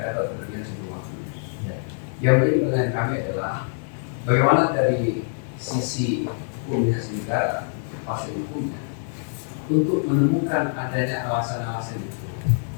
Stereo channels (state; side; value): silent; right; digital silence